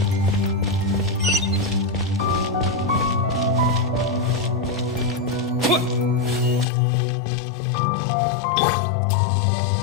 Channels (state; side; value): drops out; right; at 6.7 s